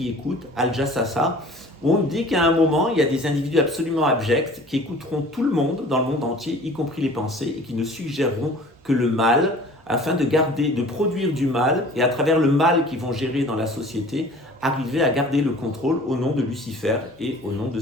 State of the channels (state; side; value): normal; both; correlation 0.46